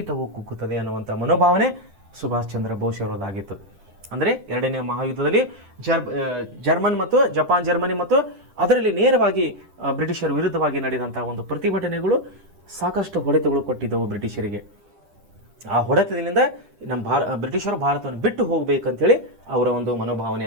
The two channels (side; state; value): left; late; 10 ms